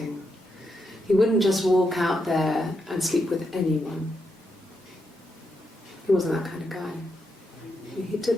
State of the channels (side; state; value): both; normal; correlation 0.83